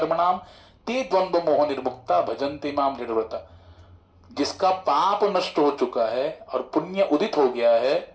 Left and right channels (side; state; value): both; identical; correlation 1.00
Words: ते द्वंद्व मोह निर्मुक्ता भजन्ते माम दृढ़व्रता। जिसका पाप नष्ट हो चुका है और पुण्य उदित हो गया है,